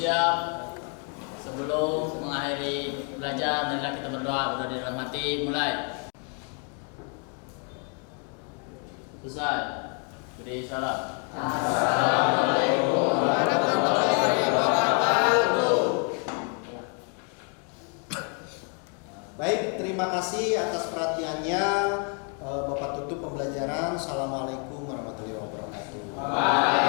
Sebelum mengakhiri belajar, marilah kita berdoa di dalam hati. Mulai. Selesai. Beri salam. Assalamualaikum warahmatullahi wabarakatuh. Baik, terima kasih atas perhatiannya. Bapak tutup pembelajaran. Assalamualaikum warahmatullahi wabarakatuh.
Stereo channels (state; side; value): quieter; right; 39.6 dB